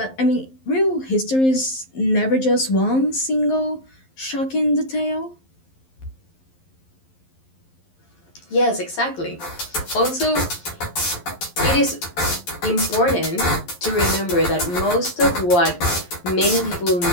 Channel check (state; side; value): late; right; 11 ms